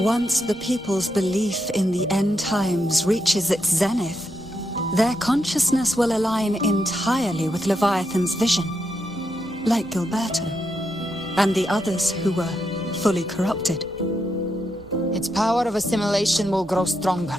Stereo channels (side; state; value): both; normal; correlation 0.83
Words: the people's belief in the end times reaches its zenith, their consciousness will align entirely with Leviathan's vision, like Gilberto, and the others who were fully corrupted. Its power of assimilation will grow